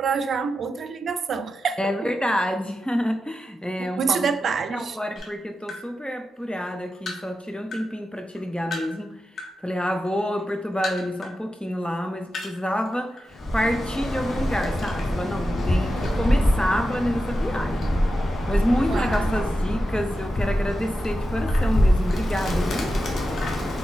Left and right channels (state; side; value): normal; both; correlation 0.90